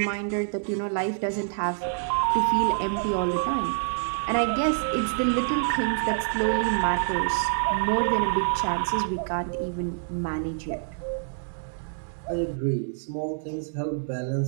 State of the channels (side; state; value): left; silent; 60 dB below the other